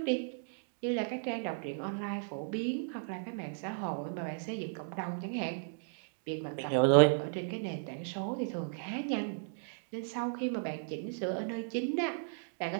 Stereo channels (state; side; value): silent; left; digital silence